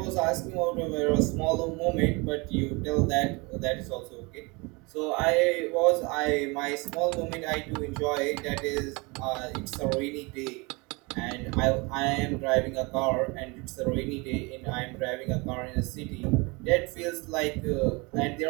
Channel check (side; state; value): left; quieter; 27.3 dB